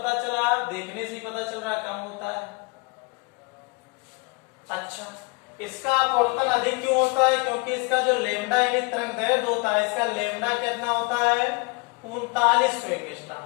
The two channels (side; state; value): right; quieter; 30.8 dB